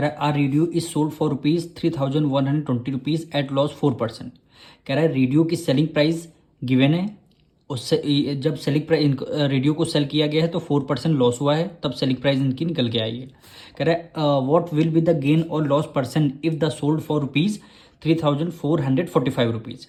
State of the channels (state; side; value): identical; both; correlation 1.00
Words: रहा है R radio is sold for ₹3,120 at loss 4%। कह रहा है रेडियो की सेलिंग प्राइस गिवन है, उससे जब सेलिंग प्राइस रेडियो को सेल किया गया है तो 4% लॉस हुआ है, तब सेलिंग प्राइस इनकी निकल के आई है। कह रहा है what will be the gain और loss percent if the sold for ₹3,445।